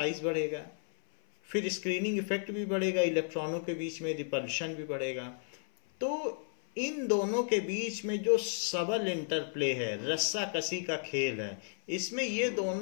बढ़ेगा, फिर स्क्रीनिंग इफेक्ट भी बढ़ेगा, इलेक्ट्रॉनों के बीच में रिपल्शन भी बढ़ेगा. तो इन दोनों के बीच में जो सबल इंटरप्ले है, रस्सा कसी का खेल है, इसमें ये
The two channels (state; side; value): silent; right; 56 dB below the other